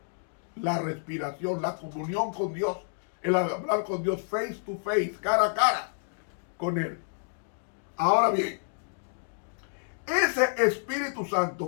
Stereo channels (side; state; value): right; silent; digital silence